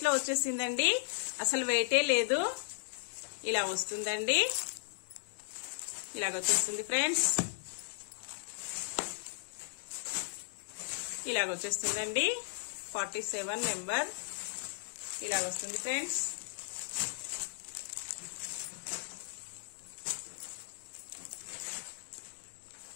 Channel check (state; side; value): silent; right; digital silence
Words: లో వచ్చేసిందండి. అసలు వెయిటే లేదు. ఇలా వస్తుందండి. ఇలాగ వచ్చేస్తుంది ఫ్రెండ్స్. ఇలాగ వచ్చేస్తుందండి. 47 నెంబర్ ఇలా వస్తుంది ఫ్రెండ్స్.